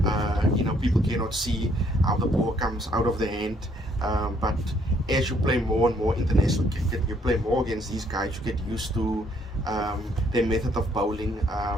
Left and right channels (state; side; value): normal; both; correlation 0.67